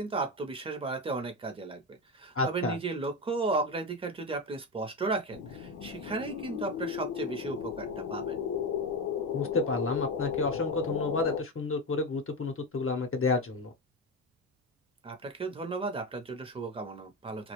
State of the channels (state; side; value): normal; both; correlation 0.16